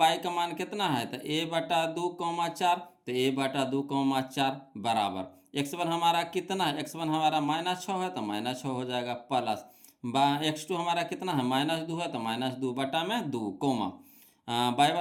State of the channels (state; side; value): identical; both; correlation 1.00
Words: y का मान कितना है, तो a/2,4, तो a/2,4 बराबर x1 हमारा कितना है, x1 हमारा -6 है, तो -6 हो जाएगा, प्लस x2 हमारा कितना है -2 है, तो -2 बटा में 2 कोमा